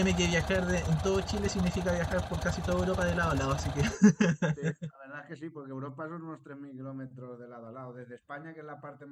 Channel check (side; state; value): both; identical; correlation 1.00